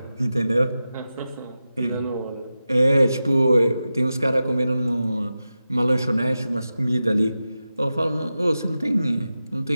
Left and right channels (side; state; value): both; inverted; correlation -0.93